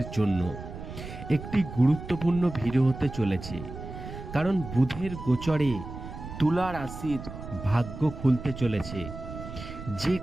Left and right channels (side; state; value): right; noise; rumble, 11 dB below the sound